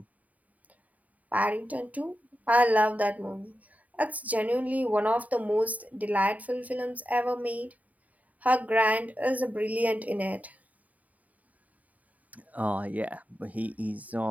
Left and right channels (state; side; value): late; left; 0.073 ms